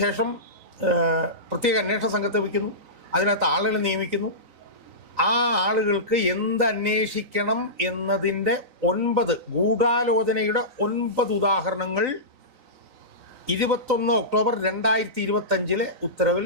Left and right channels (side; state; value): left; late; 3.9 ms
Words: ശേഷം പ്രത്യേക അന്വേഷണ സംഘത്തെ വയ്ക്കുന്നു, അതിനകത്ത് ആളുകളെ നിയമിക്കുന്നു. ആ ആളുകൾക്ക് എന്തന്വേഷിക്കണം എന്നതിൻ്റെ 9 ഗൂഢാലോചനയുടെ 9 ഉദാഹരണങ്ങൾ 21 ഒക്ടോബർ 2025 ഉത്തരവിൽ